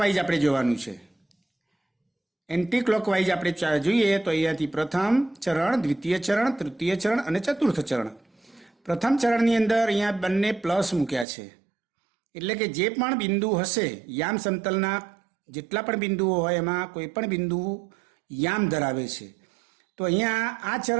આપણે જોવાનું છે. એન્ટી ક્લોકવાઇઝ આપણે જોઈએ તો અહીંયાથી પ્રથમ ચરણ, દ્વિતીય ચરણ, તૃતીય ચરણ અને ચતુર્થ ચરણ. પ્રથમ ચરણની અંદર અહીંયા બંને પ્લસ મૂક્યા છે. એટલે કે જે પણ બિંદુ હશે, યામ સમતલના જેટલા પણ બિંદુઓ હોય એમાં કોઈ પણ બિંદુ યામ ધરાવે છે. તો અહીંયા આ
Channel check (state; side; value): drops out; left; at 11.2 s